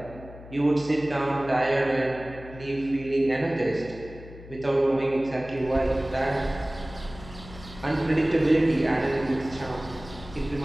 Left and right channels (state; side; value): noise; left; hum, 17 dB below the sound